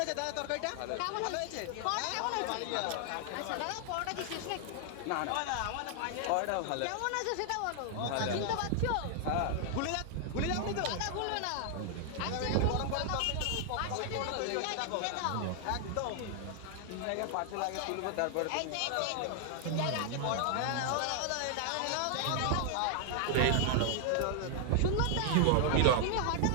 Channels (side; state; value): both; different; correlation 0.00